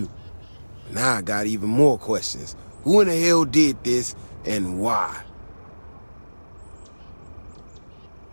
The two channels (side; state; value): both; inverted; correlation -1.00